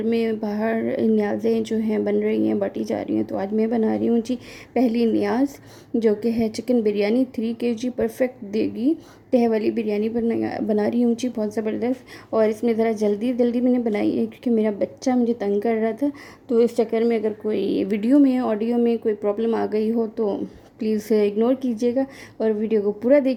में बाहर न्याज़ें जो हैं बन रही हैं, बाटी जा रही हैं। तो आज मैं बना रही हूँ जी पहली न्याज़, जो कि है चिकन बिरयानी 3 kg परफेक्ट देगी तह वाली बिरयानी बना रही हूँ जी, बहुत ज़बरदस्त। और इसमें ज़रा जल्दी जल्दी मैंने बनाई है क्योंकि मेरा बच्चा मुझे तंग कर रहा था। तो इस चक्कर में अगर कोई वीडियो में ऑडियो में कोई प्रॉब्लम आ गई हो तो प्लीज़ इग्नोर कीजिएगा और वीडियो को पूरा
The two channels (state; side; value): identical; both; correlation 1.00